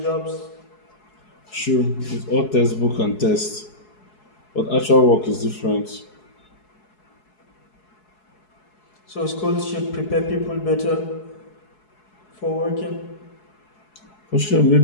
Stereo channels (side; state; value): right; late; 4.7 ms